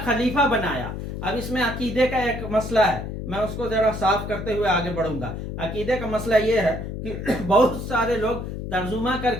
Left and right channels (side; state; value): left; noise; hum, 6 dB below the sound